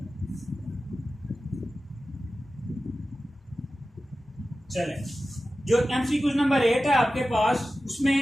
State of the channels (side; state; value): both; normal; correlation 0.94